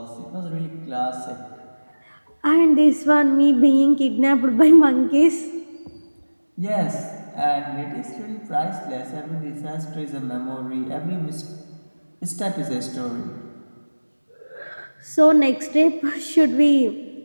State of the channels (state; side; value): inverted; both; correlation -1.00